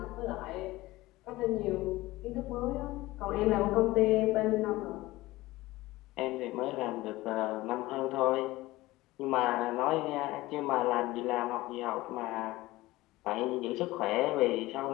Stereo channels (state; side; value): quieter; right; 18.7 dB